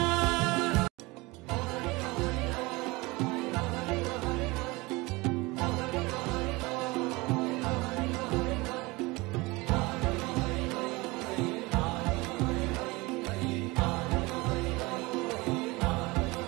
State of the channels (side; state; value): left; quieter; 23.2 dB